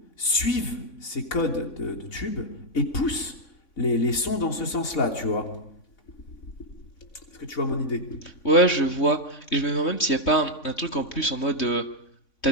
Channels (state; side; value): late; right; 3.5 ms